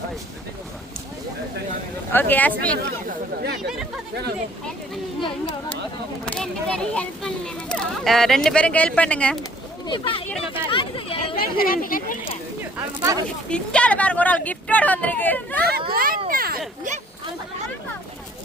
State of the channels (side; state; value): both; normal; correlation 0.57